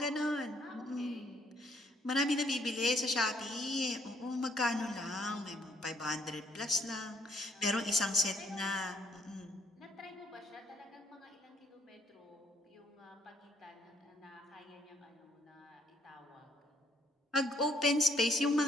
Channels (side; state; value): both; normal; correlation 0.68